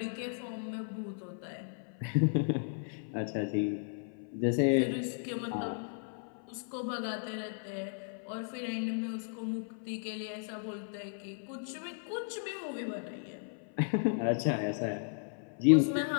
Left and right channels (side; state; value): right; silent; 54 dB below the other